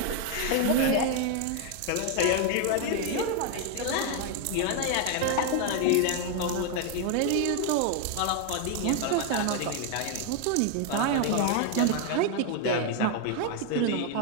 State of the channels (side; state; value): both; different; correlation 0.01